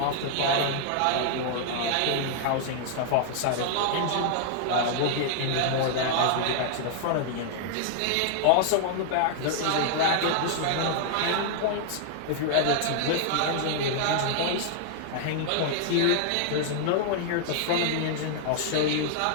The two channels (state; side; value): different; both; correlation -0.01